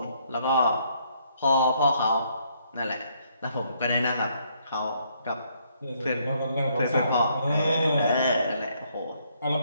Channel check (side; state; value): both; inverted; correlation -0.70